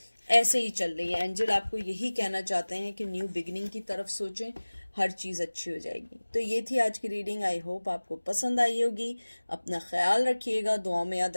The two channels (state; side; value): inverted; both; correlation -1.00